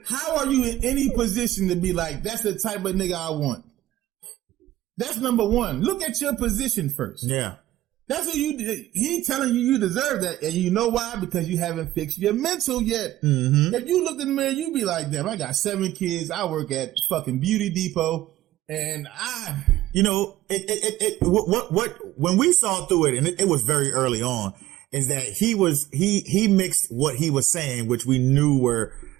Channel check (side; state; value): left; quieter; 15.2 dB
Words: How are you in any position to be like, that's the type of nigga I want? That's number one. Look at your position first. Yeah. That's what you did. He telling you deserve that. And you know why? Because you haven't fixed your mental yet. If you looked in the mirror, you'd be like, damn, I got 7 kids. I work at fucking Beauty Depot. And when we saw through it, and it was very early on, is that he mixed what he was saying, which we knew were